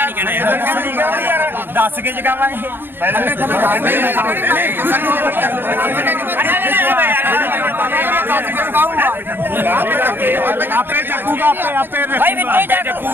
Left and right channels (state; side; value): late; left; 0.10 ms